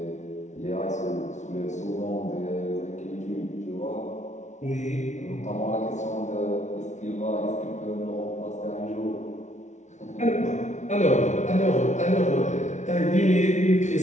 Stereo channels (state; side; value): late; right; 0.34 ms